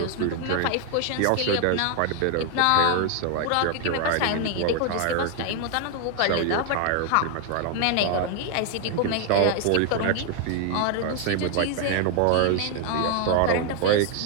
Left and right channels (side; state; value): both; different; correlation 0.00